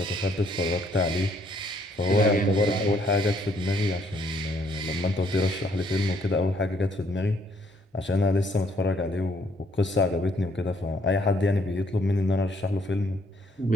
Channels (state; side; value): normal; both; correlation 0.67